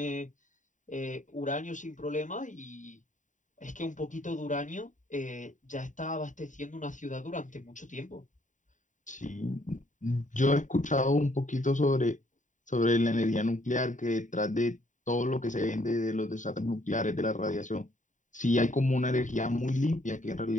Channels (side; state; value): right; late; 0.36 ms